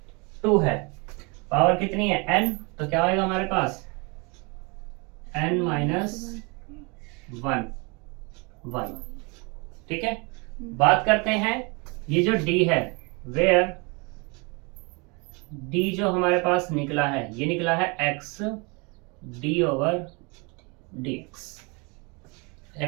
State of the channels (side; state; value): left; quieter; 30.0 dB